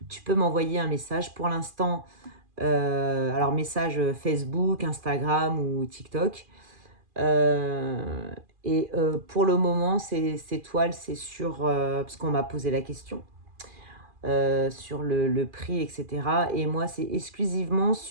m'envoyer un message. Pour l'instant, alors message Facebook, Instagram ou TikTok. Et pour le moment, ces toiles, c'est sur... parce qu'on m'a posé la question sur le prix, etc. Et moi, c'est exclusivement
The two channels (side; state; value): left; late; 2.4 ms